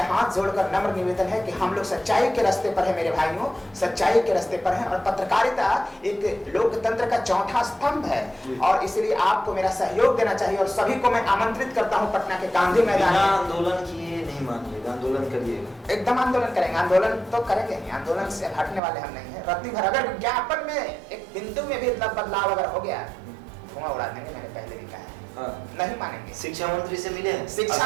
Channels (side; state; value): left; drops out; at 18.8 s